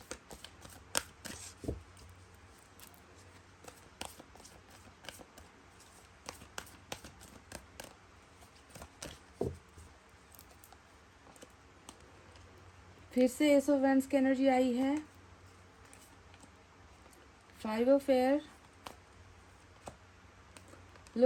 फिर से एस ऑफ वैंड्स की एनर्जी आई है। Five of air.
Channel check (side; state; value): both; identical; correlation 1.00